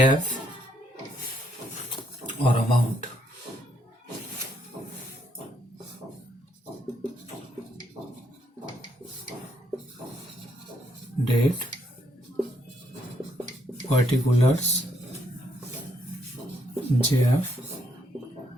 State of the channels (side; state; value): both; normal; correlation 0.73